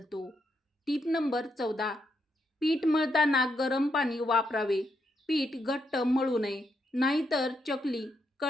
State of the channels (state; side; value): normal; both; correlation 0.80